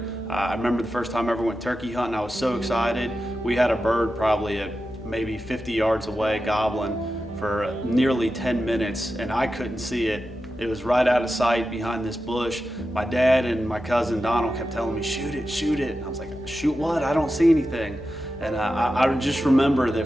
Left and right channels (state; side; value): noise; left; hum, 20 dB below the sound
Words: I remember the first time I ever went turkey hunting, I was so excited. We had a bird probably at maybe 50 yards away gobbling for nearly 10 minutes and I couldn't see it. It was right out of sight behind this bush. My dad and my cousin Donald kept telling me, shoot it, shoot it. And I was like, shoot what? I don't see anything. And I just remember that